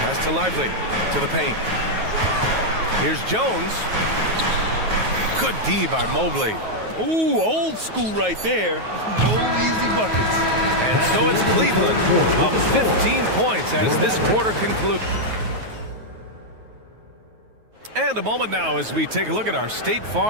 to Lively, to the paint. Here's Jones. Good D by Mobley. Ooh, old school right there. No easy buckets. And so it's Cleveland up 15 points as this quarter concludes. And a moment now as we take a look at our State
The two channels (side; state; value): left; late; 9.3 ms